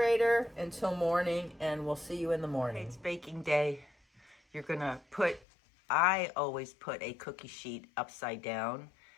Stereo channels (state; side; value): drops out; right; at 5.5 s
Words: until morning, and we'll see you in the morning. It's baking day. You're gonna I always put a cookie sheet upside down,